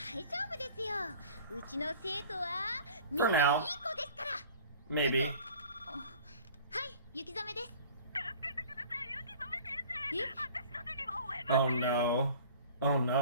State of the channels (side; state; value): both; inverted; correlation -0.46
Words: 夫ですよ。うちの生徒はみん For ないい now. 子ですから。 Maybe. はい、雪染めです。え？ Oh no. Oh